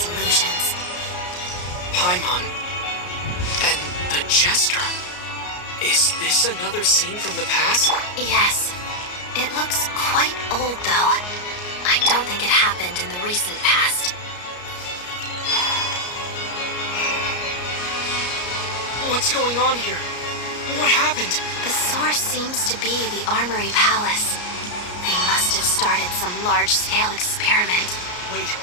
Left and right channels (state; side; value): late; right; 34 ms